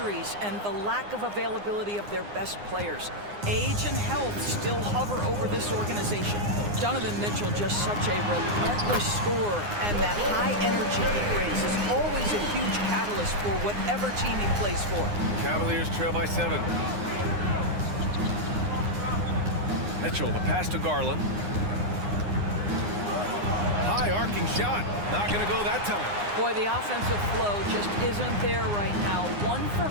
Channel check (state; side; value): late; left; 9.7 ms